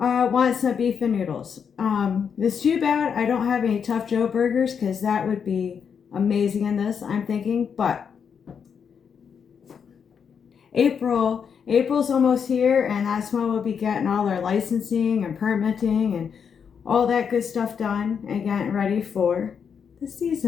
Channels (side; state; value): right; quieter; 6.9 dB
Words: some beef and noodles. It's too bad I don't have any Tough Joe burgers because that would be amazing in this, I'm thinking. But April's almost here, and that's when we'll be getting all our licensing and permitting and all that good stuff done and getting ready for the